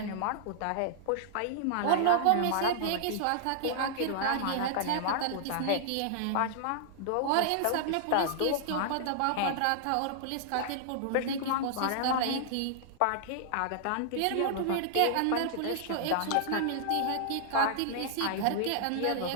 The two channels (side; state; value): both; different; correlation -0.01